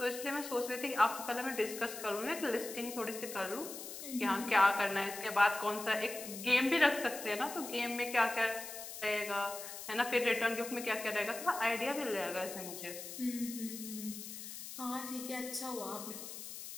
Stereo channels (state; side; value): noise; left; hiss, 10 dB below the sound